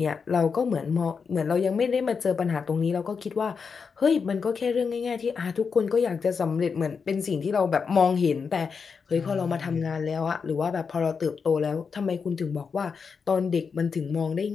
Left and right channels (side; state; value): right; quieter; 5.7 dB